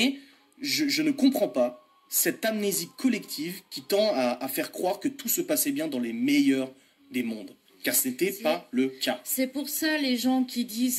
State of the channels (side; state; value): both; identical; correlation 1.00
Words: je ne comprends pas cette amnésie collective qui tend à faire croire que tout se passait bien dans les meilleurs des mondes. Car ce n'était pas le cas. C'est pour ça les gens qui